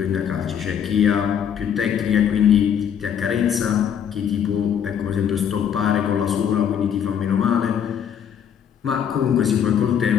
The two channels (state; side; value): quieter; right; 8.5 dB